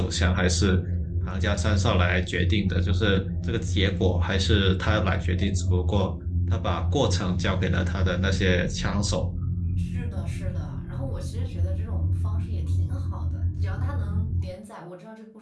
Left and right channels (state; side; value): identical; both; correlation 1.00